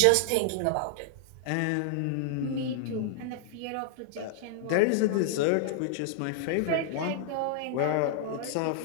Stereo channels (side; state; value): both; different; correlation -0.01